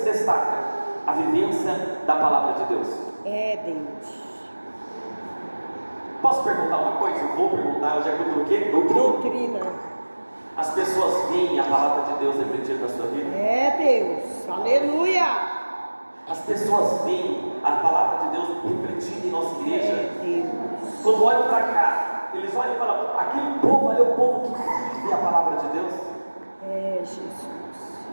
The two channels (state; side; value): inverted; both; correlation -1.00